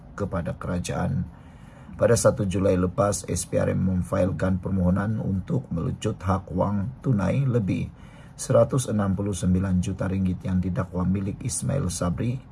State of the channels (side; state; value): both; identical; correlation 1.00